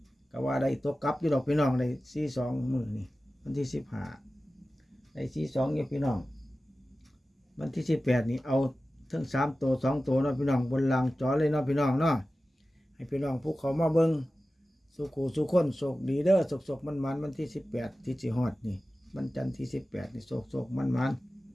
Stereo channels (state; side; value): normal; both; correlation 0.95